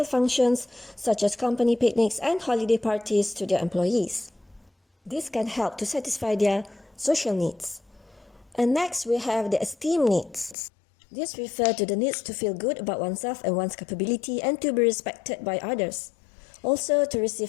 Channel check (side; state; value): right; drops out; at 10.6 s